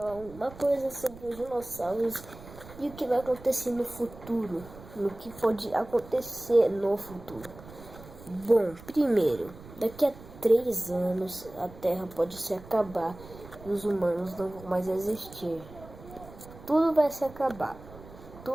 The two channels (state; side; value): noise; right; rumble, 18 dB below the sound